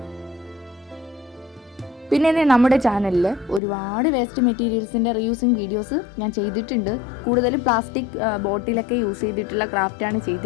പിന്നെ നമ്മുടെ ചാനലിൽ ഒരുപാട് വേസ്റ്റ് മെറ്റീരിയൽസിൻ്റെ റീയൂസിങ് വീഡിയോസ് ഞാൻ ചെയ്തിട്ടുണ്ട്. കൂടുതലും പ്ലാസ്റ്റിക് ബോട്ടിലൊക്കെ യൂസ് ചെയ്തിട്ടുള്ള ക്രാഫ്റ്റാണ്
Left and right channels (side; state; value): right; drops out; at 3.6 s